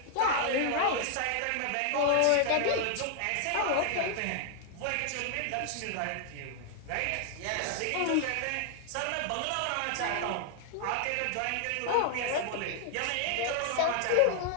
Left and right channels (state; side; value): different; both; correlation 0.00